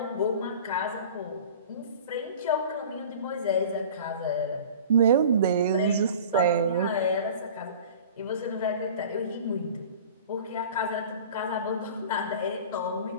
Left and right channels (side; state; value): both; inverted; correlation -0.41